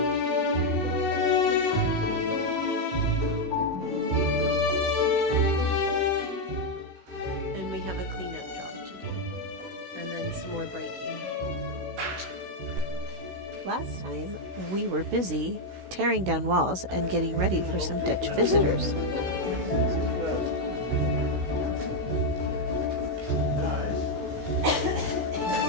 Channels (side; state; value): left; late; 16 ms